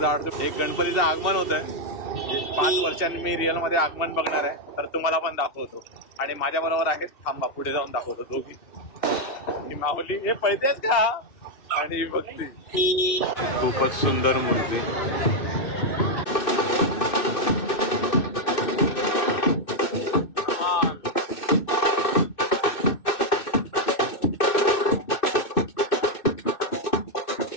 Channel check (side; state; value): right; late; 2.6 ms